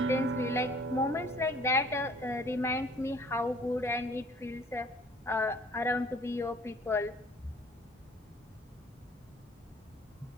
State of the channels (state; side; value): normal; both; correlation 0.54